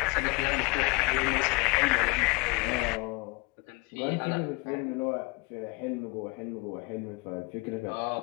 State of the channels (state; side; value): quieter; right; 26.4 dB